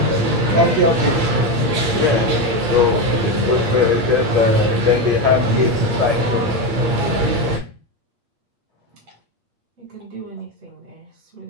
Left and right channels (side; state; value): left; late; 8.5 ms